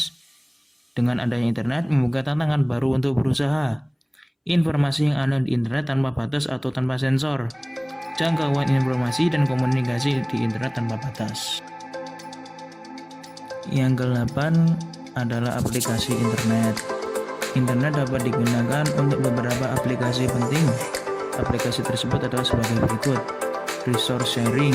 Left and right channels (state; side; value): identical; both; correlation 1.00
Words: Dengan adanya internet membuka tantangan baru untuk berusaha. Informasi yang ada di internet tanpa batas atau tanpa sensor. Jangkauan informasi dan komunikasi di internet tanpa batas. Yang ke-8 adalah aplikasi internet. Internet dapat digunakan untuk beberapa aplikasi penting. Aplikasi tersebut adalah sebagai berikut: resource